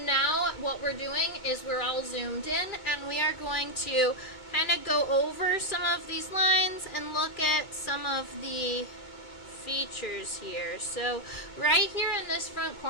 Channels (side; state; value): right; late; 2.3 ms